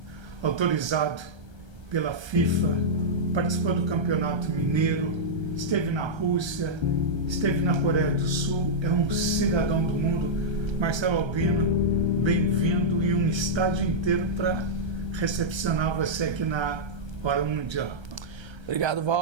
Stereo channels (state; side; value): late; left; 1.3 ms